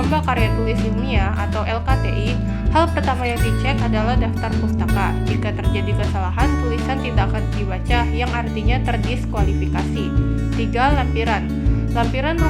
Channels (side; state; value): both; identical; correlation 1.00